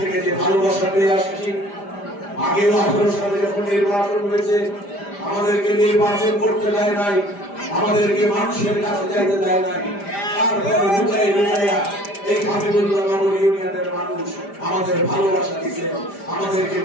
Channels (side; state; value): right; late; 5.0 ms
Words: যে ভালোবাসা পেয়ে আসছি। আগেও 18 সালে যখন নির্বাচন হয়েছে, আমাদেরকে নির্বাচন করতে দেয় নাই, আমাদেরকে মানুষের কাছে যাইতে দেয় নাই। তারপর লুকাই লুকাইয়া এই হাবিবুল্লাহনগর ইউনিয়নের মানুষ আমাদের ভালোবাসা দিচ্ছেন, আমাদেরকে